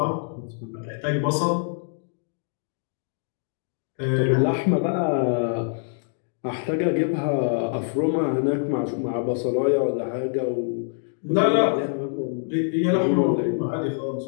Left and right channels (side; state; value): right; silent; digital silence